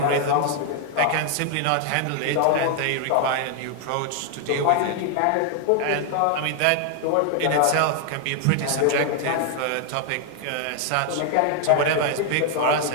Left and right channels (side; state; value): both; different; correlation 0.00